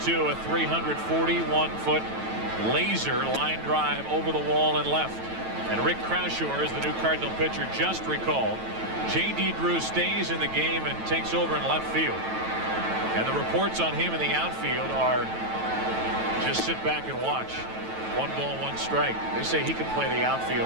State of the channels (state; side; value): late; left; 9.1 ms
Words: a 341-foot laser line drive over the wall and left. And Rick Croushore is the new Cardinal pitcher just recalled. J.D. Drew stays in the game and takes over in left field. And the reports on him in the outfield are just sit back and watch. 1-ball, 1-strike. They say he can play the